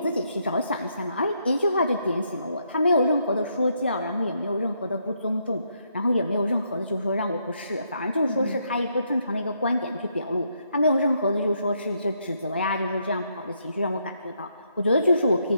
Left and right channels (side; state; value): both; inverted; correlation -0.76